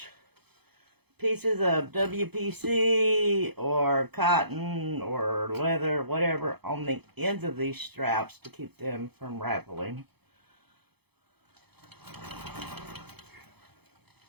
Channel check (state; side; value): late; left; 0.98 ms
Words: pieces of WPC or cotton or leather, whatever, on the ends of these straps to keep them from raveling.